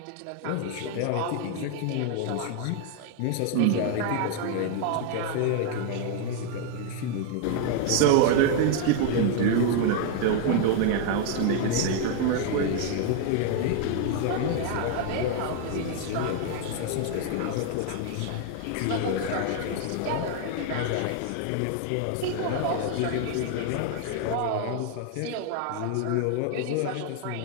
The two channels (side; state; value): both; different; correlation 0.00